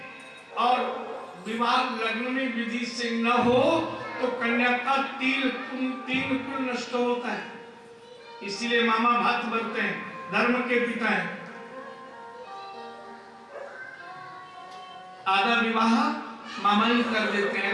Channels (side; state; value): both; identical; correlation 1.00